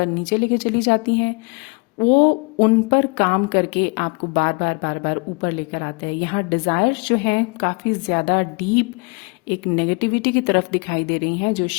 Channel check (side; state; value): right; quieter; 32.2 dB